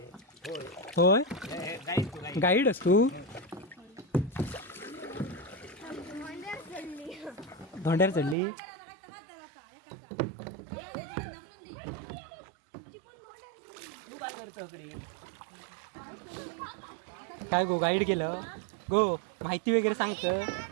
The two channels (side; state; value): left; drops out; at 8.3 s